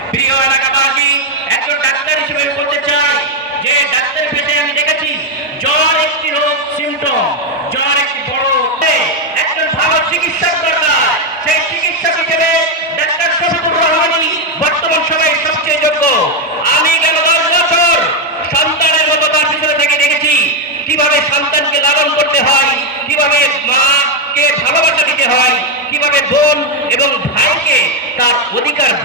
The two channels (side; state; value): both; normal; correlation 0.04